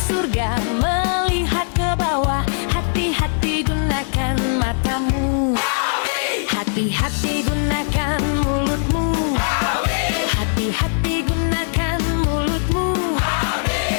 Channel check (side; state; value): right; silent; 63 dB below the other